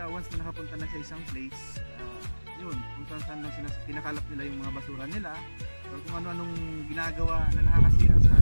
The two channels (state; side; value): inverted; both; correlation -1.00